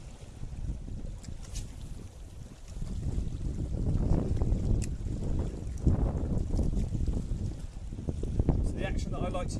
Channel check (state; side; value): identical; both; correlation 1.00